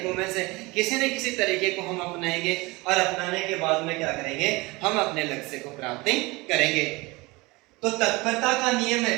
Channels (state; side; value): quieter; left; 23.5 dB